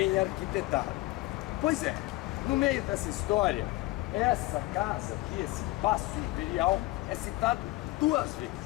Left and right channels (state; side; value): quieter; right; 19.3 dB